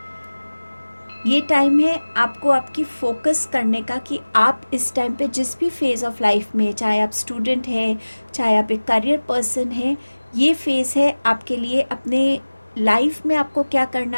ये टाइम है आपको आपकी फोकस करने का कि आप इस टाइम पे जिस भी फेज़ ऑफ लाइफ में, चाहे आप स्टूडेंट हैं, चाहे आप एक करियर पर्सन हैं, ये फेज़ है आपके लिए अपने लाइफ में आपको क्या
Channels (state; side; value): inverted; both; correlation -1.00